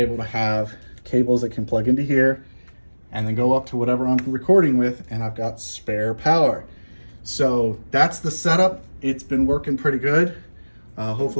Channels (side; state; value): both; inverted; correlation -1.00